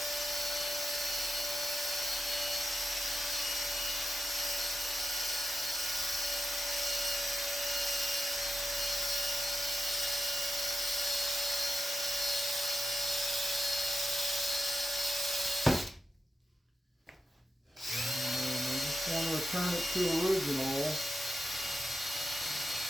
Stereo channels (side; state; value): both; normal; correlation 0.91